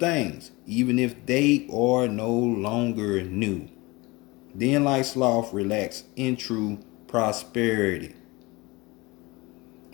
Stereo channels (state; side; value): quieter; right; 23.5 dB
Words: even if they are no longer new. Then like sloth, relax in true prosperity.